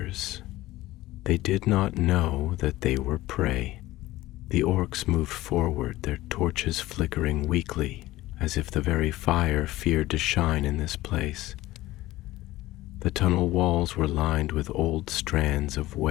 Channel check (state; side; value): quieter; right; 17.1 dB